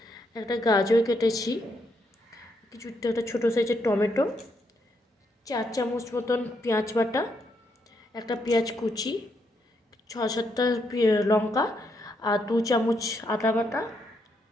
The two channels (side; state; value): both; normal; correlation 0.77